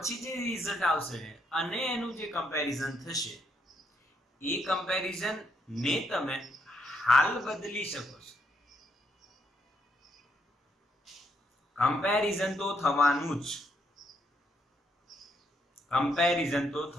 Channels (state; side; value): normal; both; correlation 0.75